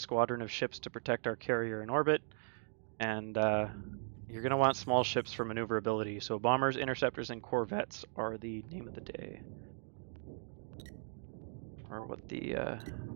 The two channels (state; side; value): silent; left; digital silence